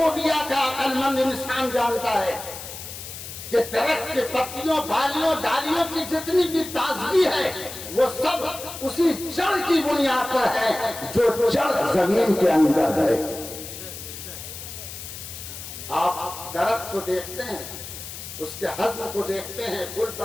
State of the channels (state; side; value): noise; left; hiss, 11 dB below the sound